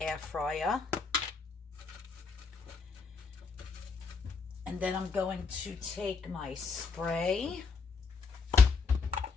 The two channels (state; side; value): quieter; right; 5.0 dB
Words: fryer. And then I'm going to take my spray.